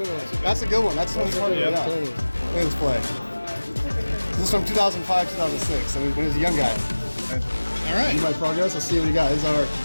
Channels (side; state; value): both; inverted; correlation -1.00